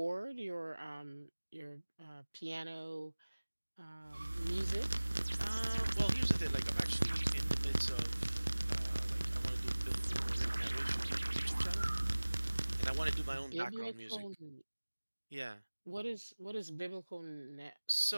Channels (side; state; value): both; inverted; correlation -1.00